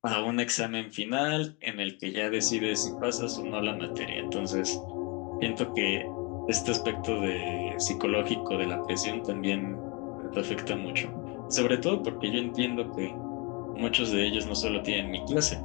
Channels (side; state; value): right; quieter; 30.1 dB